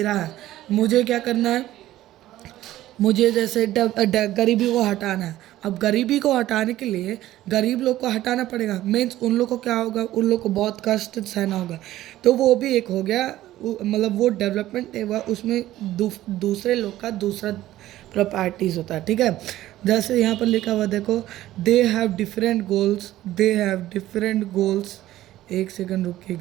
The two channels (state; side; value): quieter; left; 14.6 dB